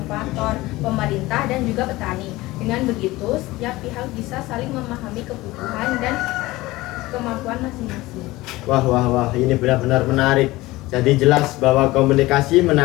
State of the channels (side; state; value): right; quieter; 19.3 dB